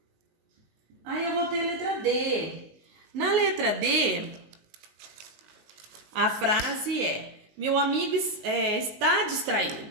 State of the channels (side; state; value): left; late; 19 ms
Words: Aí eu vou ter a letra D. Na letra D, a frase é: meu amigo está